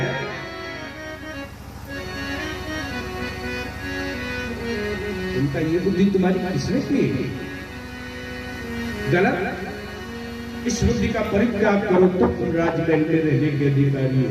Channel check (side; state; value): both; identical; correlation 1.00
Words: उनका ये बुद्धि तुम्हारी किसने की? गलत। इस बुद्धि का परित्याग करो तो तुम राजमहल में रहने के अधिकारी हो।